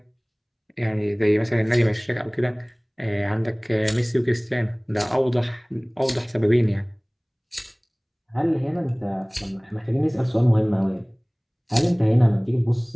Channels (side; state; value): both; identical; correlation 1.00